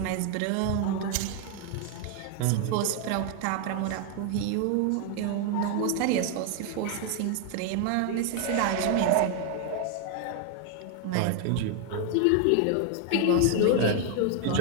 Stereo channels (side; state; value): both; different; correlation 0.00